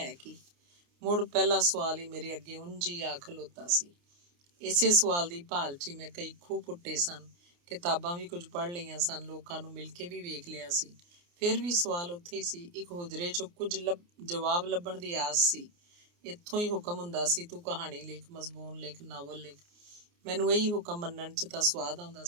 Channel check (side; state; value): left; late; 29 ms